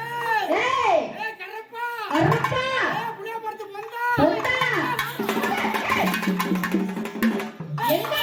ஏய் கரப்பா. கரப்பா. புளிய படுத்து வந்தா. வந்தா. எங்க?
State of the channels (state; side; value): identical; both; correlation 1.00